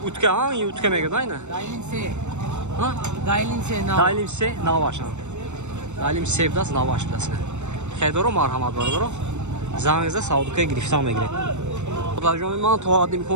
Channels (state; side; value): late; left; 0.83 ms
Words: Utka ha? İyi utka mega da yine. Dailinse. Ha? Dailinse nav. Dalim se navaşan. Dalim sevdas navaş bilasın. Xeydoro marhamat bardoro. Zangizda Saudukaya giriftan megire. Darjomi man to adim